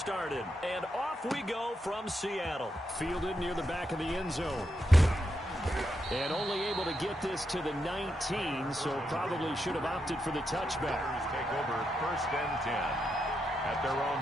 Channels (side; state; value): both; normal; correlation 0.83